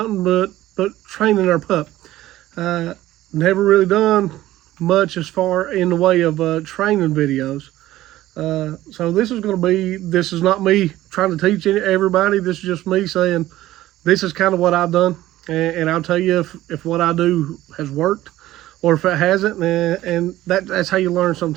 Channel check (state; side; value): quieter; left; 15.3 dB